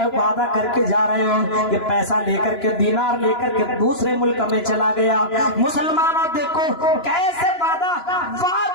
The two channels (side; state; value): right; late; 2.9 ms